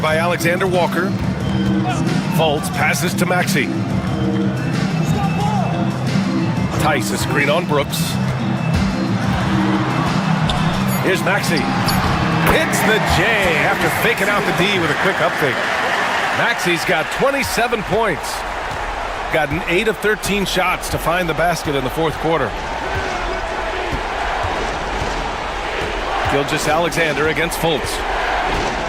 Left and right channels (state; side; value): identical; both; correlation 1.00